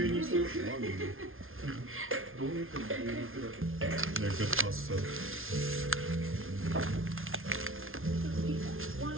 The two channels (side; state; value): left; late; 0.60 ms